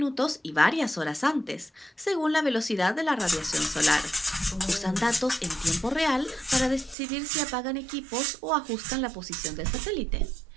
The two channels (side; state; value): left; drops out; at 7.0 s